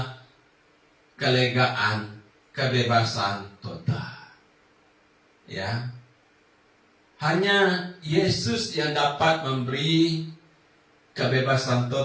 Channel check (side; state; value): both; identical; correlation 1.00